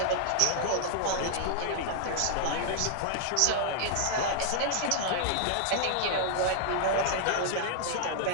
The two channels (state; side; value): different; both; correlation -0.01